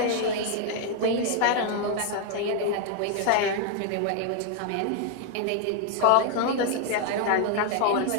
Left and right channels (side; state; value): both; different; correlation 0.00